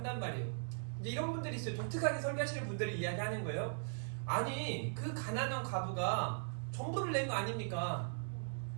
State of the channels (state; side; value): silent; left; 52 dB below the other